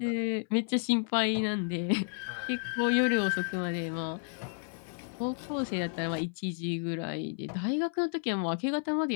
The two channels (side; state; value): right; silent; 57 dB below the other